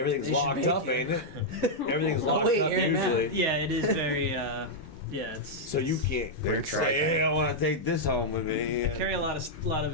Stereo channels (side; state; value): both; normal; correlation -0.05